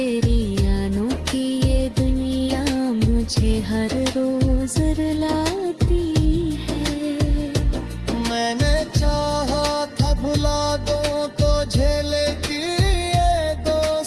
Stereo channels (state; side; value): identical; both; correlation 1.00